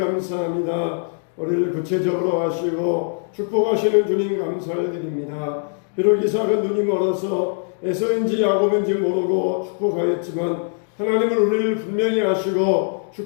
우리를 구체적으로 하시고 축복하시는 주님 감사를 드립니다. 비록 이삭은 눈이 멀어서 에서인지 야곱인지 모르고 축복하였지만 하나님은 우리를 분명히 아시고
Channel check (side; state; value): right; silent; digital silence